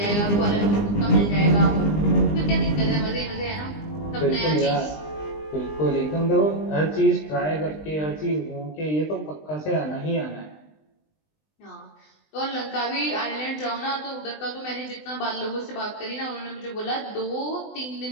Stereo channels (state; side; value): late; right; 20 ms